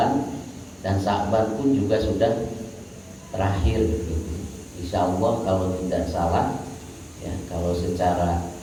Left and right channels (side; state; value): both; identical; correlation 1.00